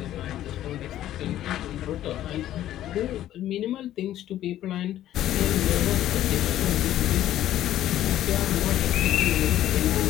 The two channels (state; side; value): quieter; right; 12.8 dB